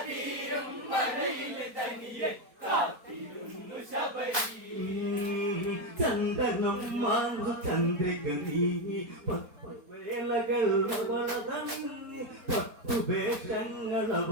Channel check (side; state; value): left; late; 4.2 ms